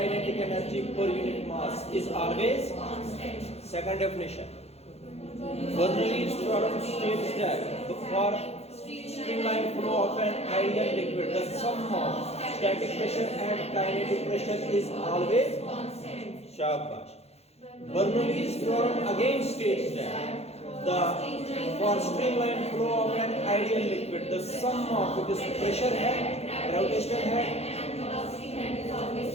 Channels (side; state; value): right; late; 0.30 ms